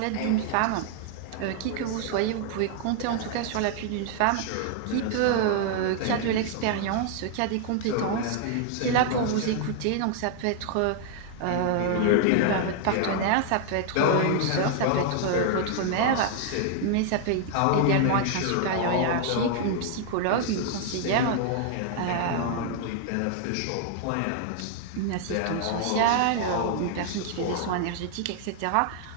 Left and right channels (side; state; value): both; different; correlation 0.00